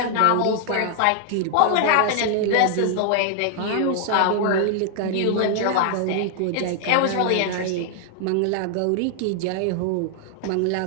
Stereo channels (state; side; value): different; both; correlation 0.00